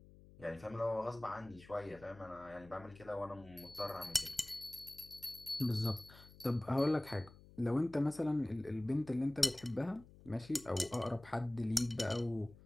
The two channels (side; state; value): left; noise; hum, 21 dB below the sound